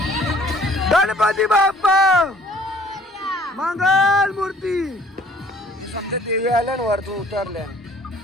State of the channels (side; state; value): both; normal; correlation 0.56